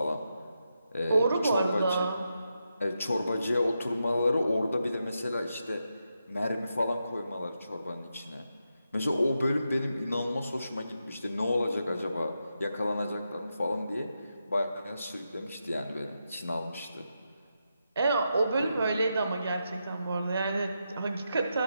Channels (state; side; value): inverted; both; correlation -0.86